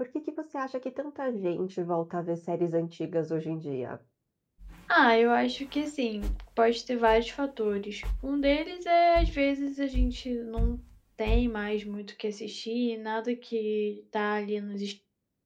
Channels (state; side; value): identical; both; correlation 1.00